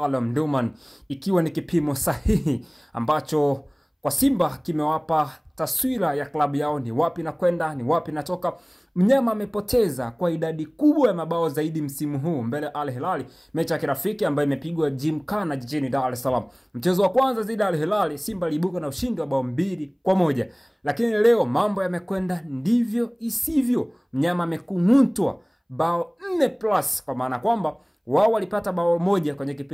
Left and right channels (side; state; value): both; identical; correlation 1.00